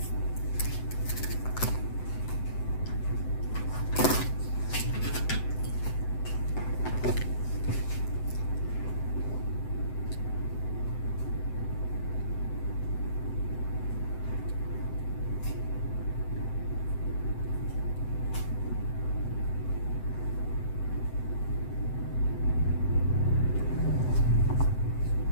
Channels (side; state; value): right; late; 7.9 ms